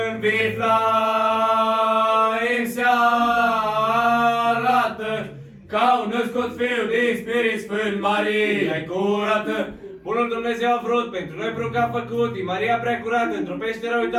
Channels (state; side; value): identical; both; correlation 1.00